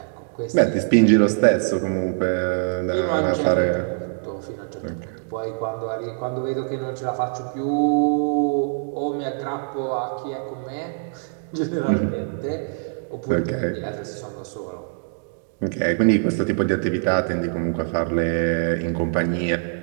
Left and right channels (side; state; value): left; silent; digital silence